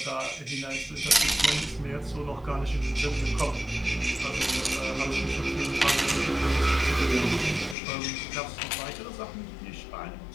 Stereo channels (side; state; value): right; drops out; at 7.8 s